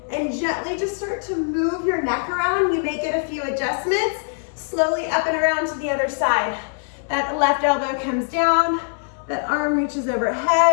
and gently just start to move your neck around, you may get a few adjustments. Slowly up and around to the other side. That left elbow comes down, that arm reaches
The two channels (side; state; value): right; silent; digital silence